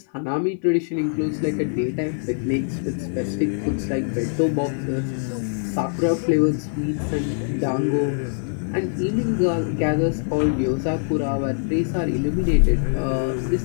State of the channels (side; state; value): right; silent; 59 dB below the other